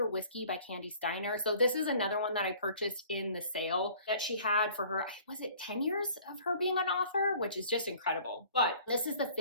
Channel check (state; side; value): inverted; both; correlation -0.52